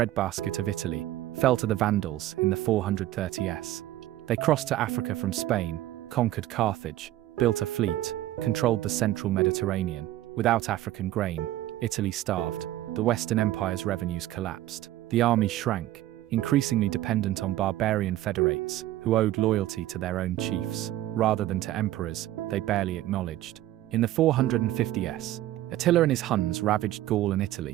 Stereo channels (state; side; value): quieter; left; 14.6 dB